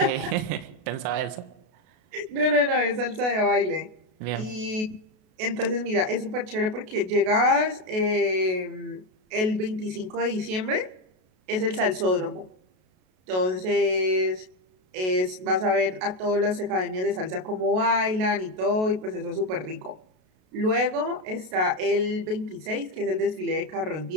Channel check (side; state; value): left; late; 32 ms